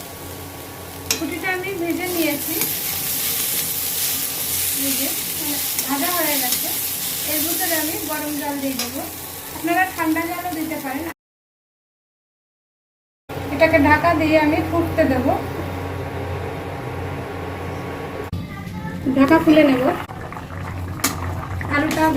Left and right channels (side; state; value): both; identical; correlation 1.00